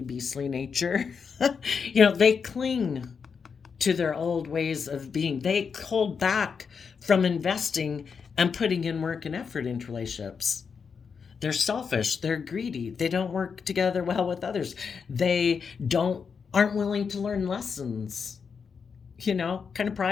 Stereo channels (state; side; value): quieter; right; 6.0 dB